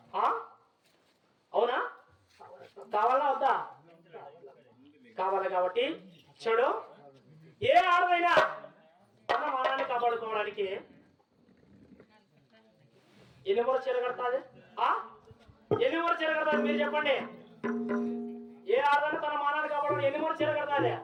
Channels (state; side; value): identical; both; correlation 1.00